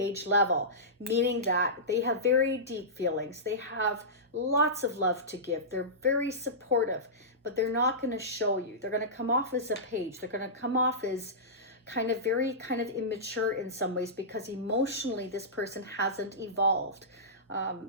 level, meaning that they have very deep feelings. They have lots of love to give. They're very supportive, but they're not going to show you. They're going to come off as a page. They're going to come off as very immature in some ways, because emotionally this person hasn't evolved.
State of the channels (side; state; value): both; normal; correlation -0.18